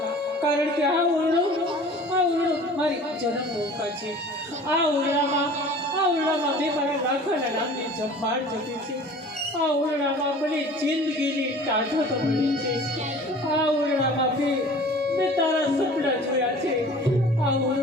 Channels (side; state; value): both; normal; correlation 0.45